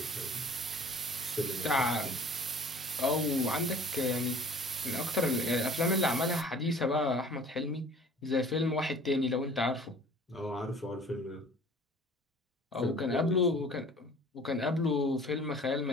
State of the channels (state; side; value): normal; both; correlation 0.48